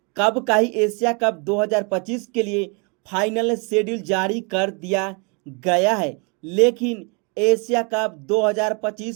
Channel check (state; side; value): quieter; left; 33.8 dB